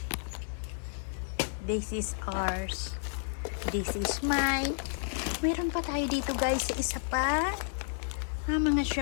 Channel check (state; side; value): silent; right; 57 dB below the other